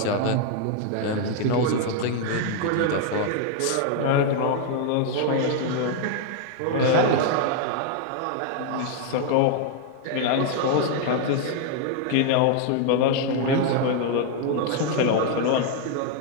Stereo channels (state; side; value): different; both; correlation 0.00